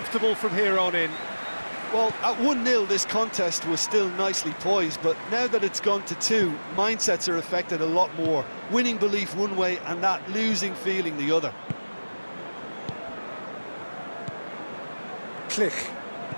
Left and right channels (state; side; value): inverted; both; correlation -1.00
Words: from here on in. Well, at 1-0 this contest was still nicely poised, but now that it's gone to 2, mindsets are affected a lot more. Winning belief one way and that losing feeling the other. Click.